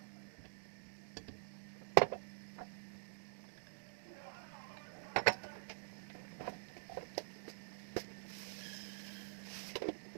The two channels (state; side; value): silent; left; digital silence